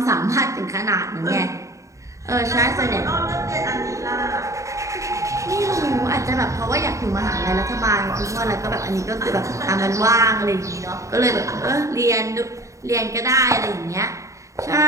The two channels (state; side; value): late; left; 0.15 ms